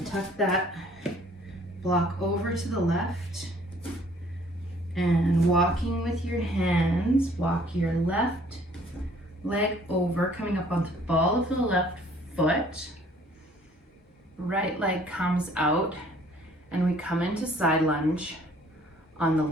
tuck that block over to the left. And walking with your hands, walk your left leg over, coming up onto the ball of the left foot. Right leg comes out, and we come into side lunge on the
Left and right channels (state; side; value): normal; both; correlation 0.58